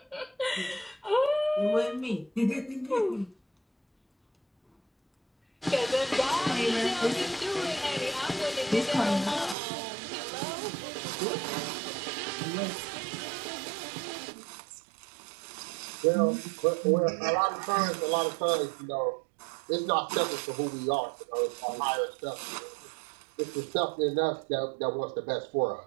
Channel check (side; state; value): left; drops out; at 9.6 s